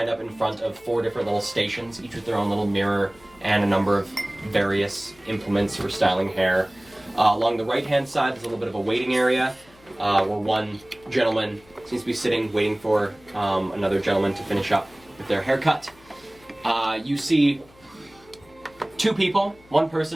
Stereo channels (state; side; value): noise; left; hum, 27 dB below the sound